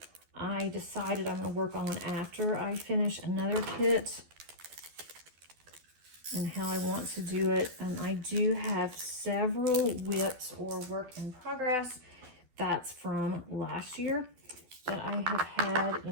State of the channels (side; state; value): left; late; 12 ms